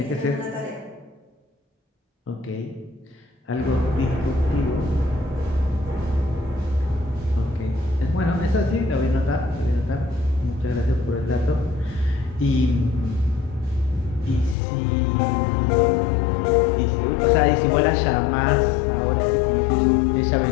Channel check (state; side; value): drops out; right; at 14.6 s